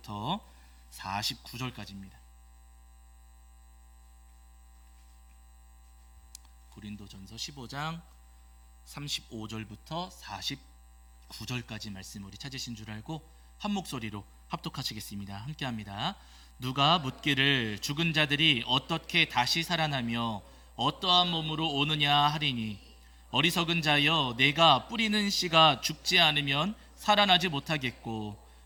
49절까지입니다. 고린도전서 15장 35절부터 49절까지 말씀 우리 찾으신 줄 알고 한 목소리로 합독하시겠습니다. 함께합니다. 누가 묻기를 죽은 자들이 어떻게 다시 살아나며 어떠한 몸으로 오느냐 하리니, 어리석은 자여, 내가 뿌리는 씨가 죽지 않으면 살아나지 못하겠고,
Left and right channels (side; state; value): both; identical; correlation 1.00